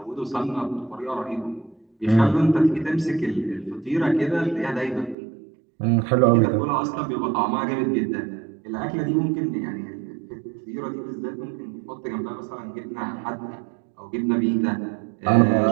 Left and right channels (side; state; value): left; drops out; at 5.2 s